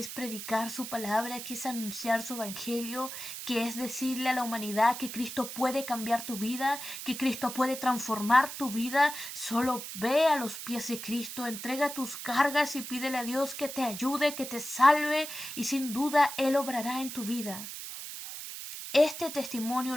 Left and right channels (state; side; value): noise; right; hiss, 9 dB below the sound